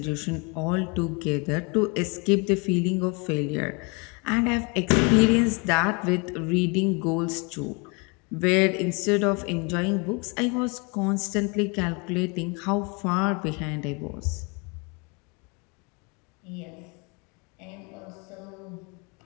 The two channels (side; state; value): right; quieter; 31.1 dB